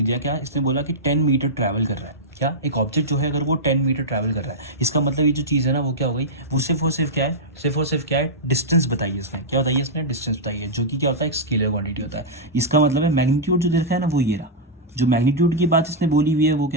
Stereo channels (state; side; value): normal; both; correlation -0.08